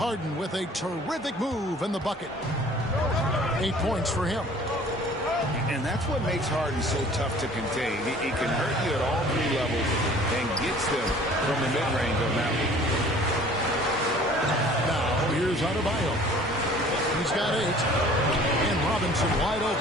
with a terrific move in the bucket. 8 points for him. And that's what makes Harden so tough to contain. He can hurt you at all 3 levels and gets them from the mid-range on that one. Now here's Adebayo. He's got 8. And Robinson wide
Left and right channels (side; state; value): both; normal; correlation 0.50